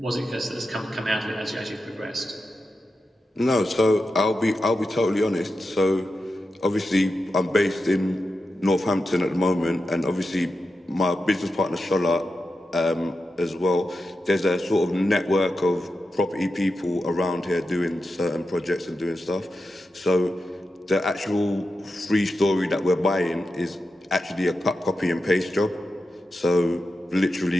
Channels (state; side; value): normal; both; correlation 0.90